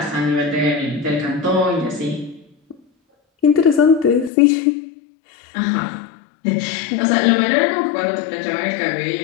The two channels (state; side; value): drops out; right; at 4.3 s